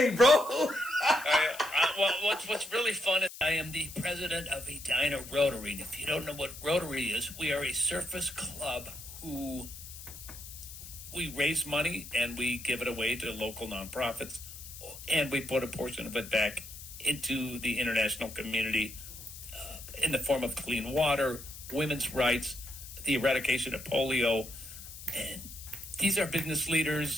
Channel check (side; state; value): left; noise; hiss, 14 dB below the sound